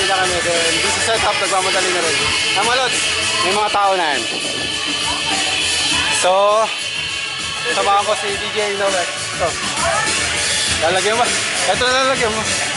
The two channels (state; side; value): identical; both; correlation 1.00